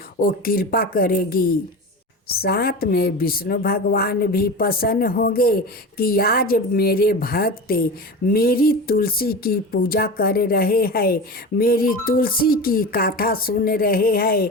वो कृपा करेगी। साथ में विष्णु भगवान भी प्रसन्न होंगे कि आज मेरे भक्त मेरी तुलसी की पूजा कर रहे हैं, मेरी तुलसी की कथा सुन रहे हैं,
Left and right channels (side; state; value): both; normal; correlation 0.29